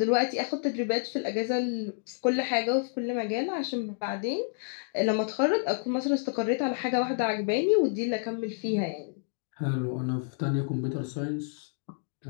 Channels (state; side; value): silent; right; digital silence